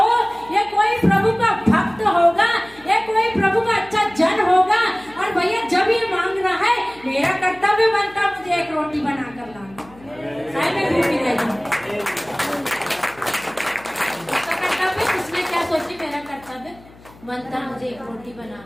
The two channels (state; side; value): noise; left; hum, 24 dB below the sound